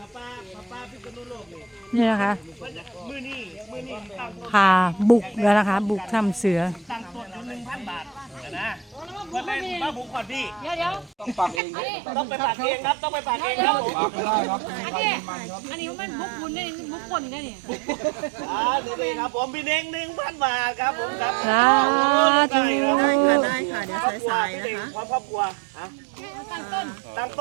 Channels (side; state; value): left; drops out; at 11.6 s